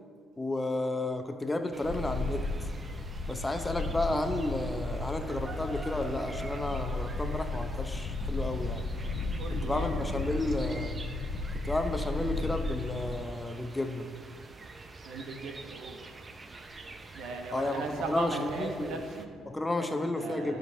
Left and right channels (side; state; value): both; normal; correlation 0.81